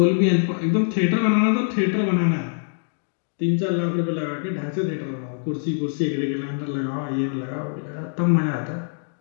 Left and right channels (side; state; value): right; silent; 63 dB below the other